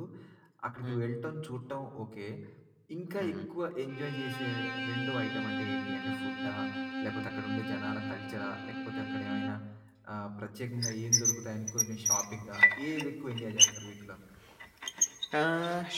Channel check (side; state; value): both; identical; correlation 1.00